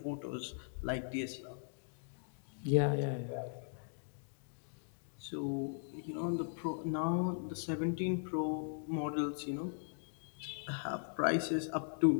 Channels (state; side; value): silent; right; digital silence